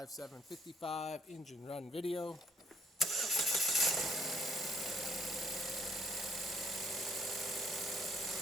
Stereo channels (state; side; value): normal; both; correlation 0.64